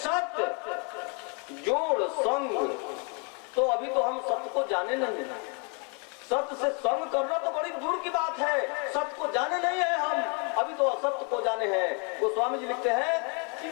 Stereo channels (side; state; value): right; quieter; 36.6 dB